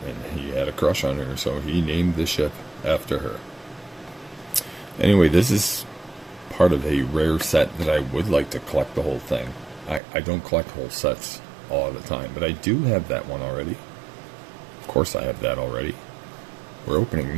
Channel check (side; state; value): left; drops out; at 10.0 s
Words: And he had a crush on her, so he named the ship after her. Anyway, this is part of a rare set that I would like to collect the whole thing. I don't collect whole sets all the time, but I do have that one already. Of course I have that already. We're opening